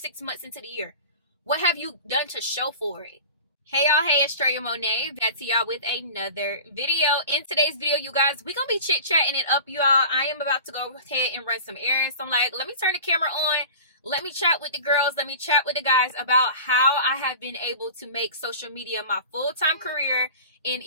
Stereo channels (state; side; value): inverted; both; correlation -0.37